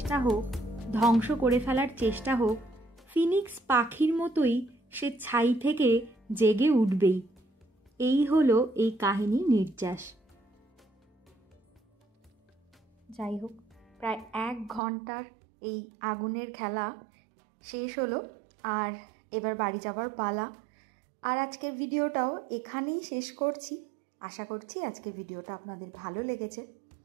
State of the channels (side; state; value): left; drops out; at 14.8 s